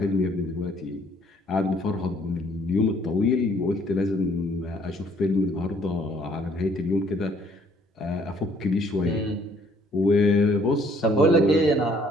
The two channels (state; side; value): normal; both; correlation 0.62